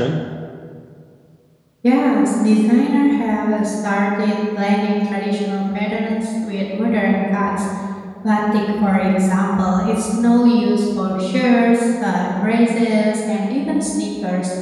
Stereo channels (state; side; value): identical; both; correlation 1.00